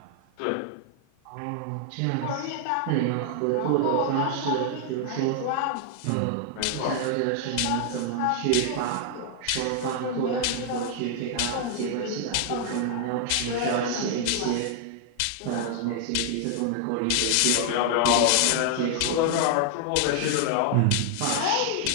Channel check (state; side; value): different; both; correlation 0.00